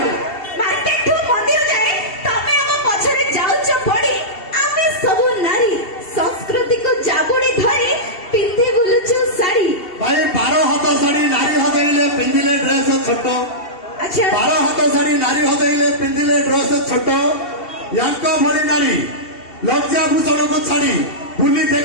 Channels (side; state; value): right; late; 2.7 ms